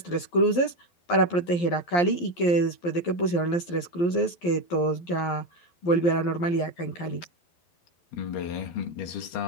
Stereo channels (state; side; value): late; right; 11 ms